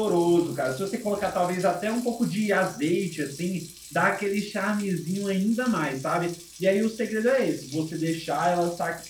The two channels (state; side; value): identical; both; correlation 1.00